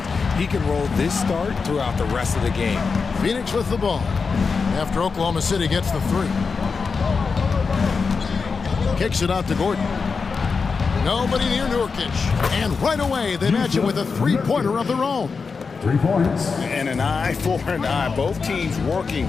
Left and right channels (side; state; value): right; quieter; 5.0 dB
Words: He can roll this start throughout the rest of the game. Phoenix with the ball after Oklahoma City gets the 3. Kicks it out to Gordon. Nobody near Nurkic. And right away, they match it with a 3-pointer of their own. 3 points. And an eye for an eye. Both teams working